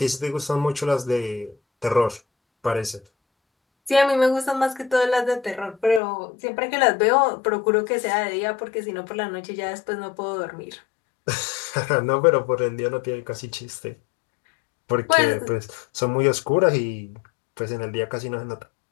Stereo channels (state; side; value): drops out; right; at 6.0 s